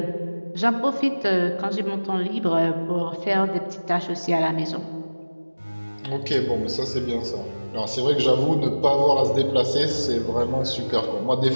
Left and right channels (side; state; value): both; inverted; correlation -1.00